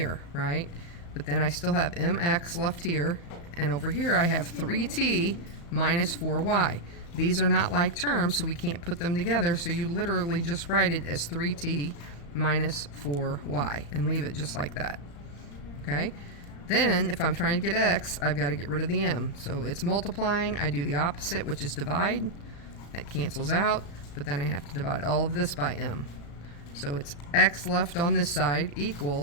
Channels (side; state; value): right; late; 35 ms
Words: right? But then I still have mx left here, and over here I have 3t minus 4y. These are not like terms, so we can't put them together, so you literally just write it as 3t minus 4y and leave it just like that. Okay? Then, if I'm trying to get x, I've got to get rid of the m. So it's multiplying, I do the opposite, which is divide. That cancels out, but then I have to divide all of this by m. So it's x left on this side